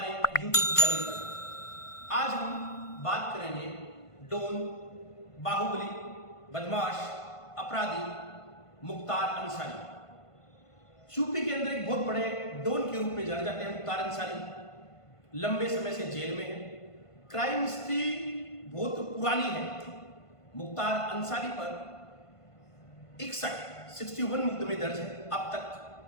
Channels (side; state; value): right; late; 1.5 ms